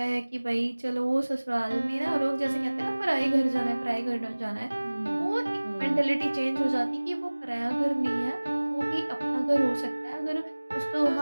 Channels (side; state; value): both; inverted; correlation -1.00